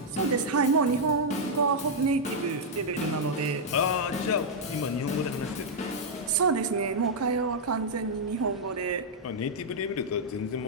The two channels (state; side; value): normal; both; correlation -0.04